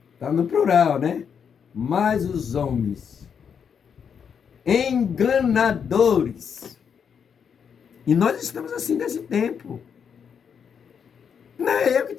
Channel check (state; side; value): quieter; right; 7.2 dB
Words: tá no plural, né? Mas os homens, enganadores. E nós estamos assim nesse tempo. Não é eu que